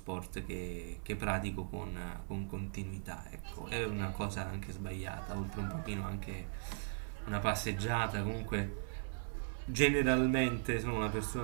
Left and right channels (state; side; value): silent; left; 52 dB below the other